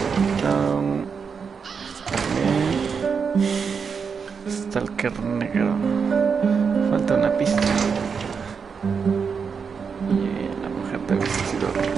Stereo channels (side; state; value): left; quieter; 6.0 dB